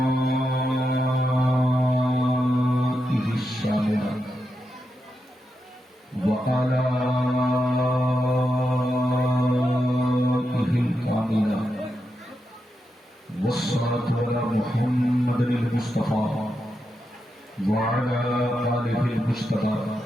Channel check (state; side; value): normal; both; correlation 0.86